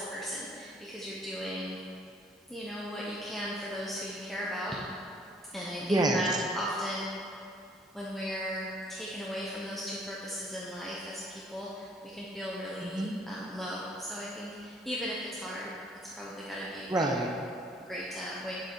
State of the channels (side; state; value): both; normal; correlation 0.60